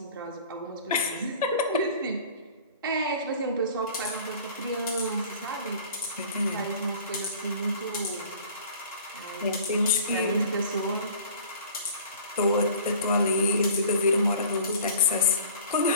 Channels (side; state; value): both; inverted; correlation -0.45